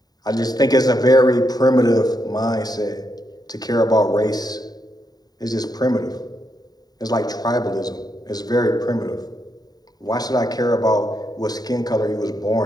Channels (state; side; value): late; right; 0.19 ms